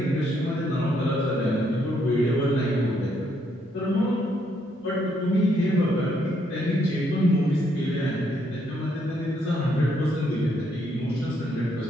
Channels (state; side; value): normal; both; correlation 0.73